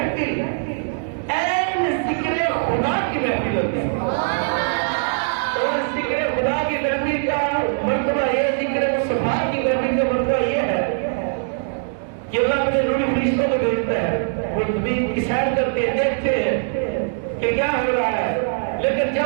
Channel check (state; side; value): silent; left; digital silence